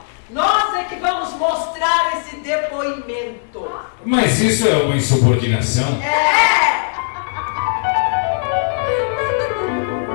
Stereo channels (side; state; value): right; silent; digital silence